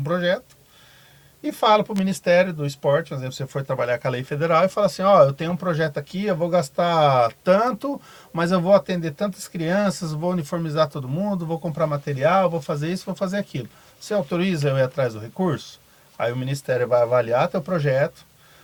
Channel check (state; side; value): identical; both; correlation 1.00